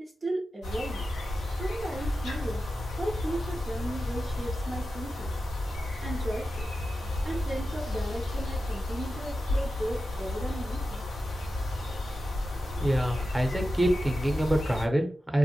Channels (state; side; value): normal; both; correlation 0.92